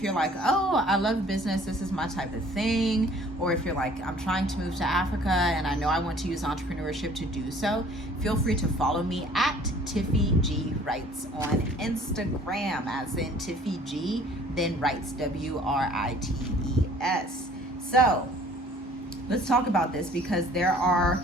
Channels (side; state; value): both; normal; correlation 0.53